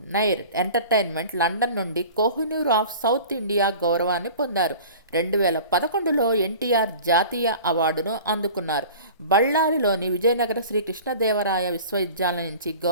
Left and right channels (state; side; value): inverted; both; correlation -0.42